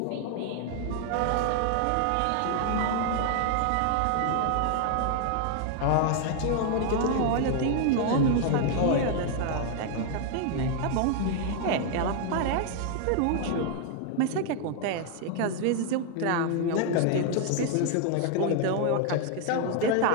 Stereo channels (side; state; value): both; different; correlation 0.00